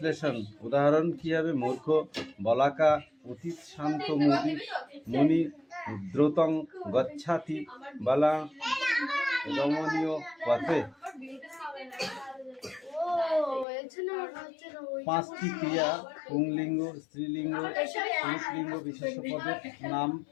উদাহরণ কি হবে? মূর্খ, বলাকা, অতীত, শান্ত, মুনি, দ্রুতং গচ্ছাতি বালা রমণীয় পথে। পাঁচটি ক্রিয়া পুংলিঙ্গ, স্ত্রীলিঙ্গ, পুরুষলিঙ্গ বিশেষ্য পদের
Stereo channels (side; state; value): right; drops out; at 13.7 s